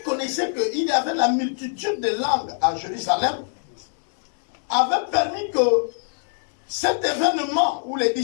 connaissait qu'il y avait la multitude de langues à Jérusalem avait permis que cet événement où les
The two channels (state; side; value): silent; right; digital silence